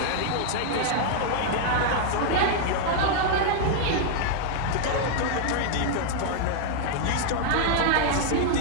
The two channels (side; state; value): both; different; correlation -0.01